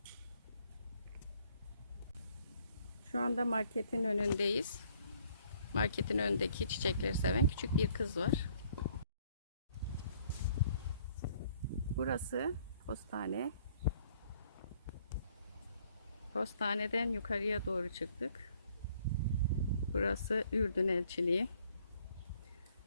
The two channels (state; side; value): inverted; both; correlation -0.63